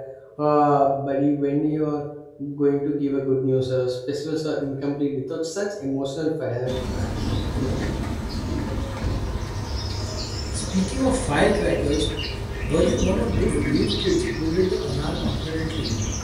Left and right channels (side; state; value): both; identical; correlation 1.00